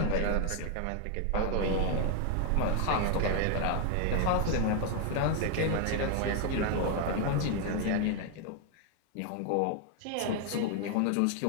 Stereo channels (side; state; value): both; different; correlation 0.00